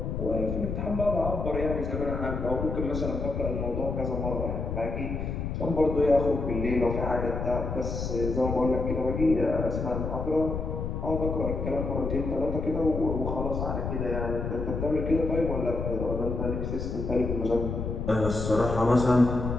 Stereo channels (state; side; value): noise; left; rumble, 3 dB below the sound